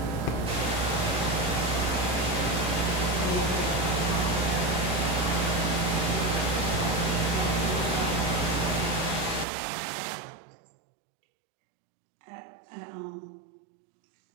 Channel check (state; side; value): drops out; left; at 9.5 s